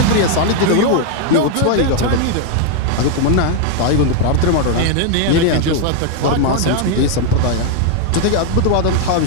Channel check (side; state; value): both; different; correlation 0.00